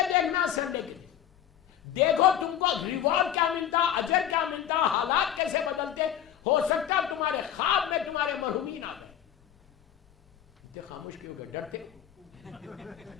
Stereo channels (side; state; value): right; quieter; 10.3 dB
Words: دیکھنا سنڈے کے دن, دیکھو تم کو ریوارڈ کیا ملتا, اجر کیا ملتا, حالات کیسے بدلتے. ہو سکتا ہے تمہارے خواب میں تمہارے مرحومین آ گئے. اتنے خاموش کیوں گئے, ڈرتے؟